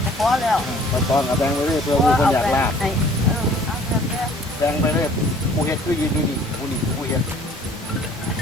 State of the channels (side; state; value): both; normal; correlation 0.54